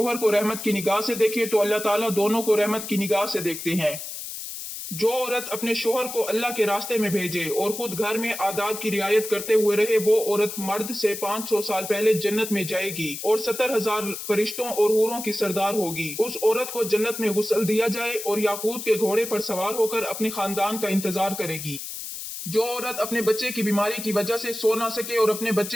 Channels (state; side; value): noise; left; hiss, 8 dB below the sound